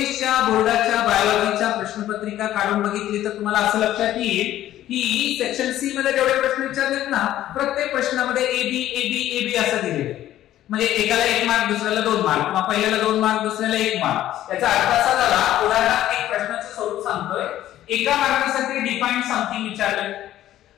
बोर्डाच्या बायोलॉजीच्या प्रश्नपत्रिका काढून बघितली तर तुम्हाला असं लक्षात येईल की सेक्शन सी मध्ये जेवढे प्रश्न विचारलेत ना, प्रत्येक प्रश्नामध्ये एबी एबी एबी असं दिलेलं आहे. म्हणजे एकाला 1 मार्क, दुसऱ्याला 2 मार्क, मग पहिल्याला 2 मार्क, दुसऱ्याला 1 मार्क. याचा अर्थ असा झाला, उदाहरणार्थ एक प्रश्नाचं स्वरूप सांगतोय. एका मार्कासाठी डिफाइन समथिंग विचारलं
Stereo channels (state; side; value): quieter; right; 13.1 dB